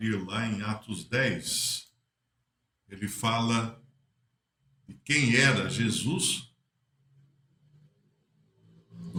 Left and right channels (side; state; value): both; identical; correlation 1.00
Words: lá em Atos 10. Ele fala de quem era Jesus,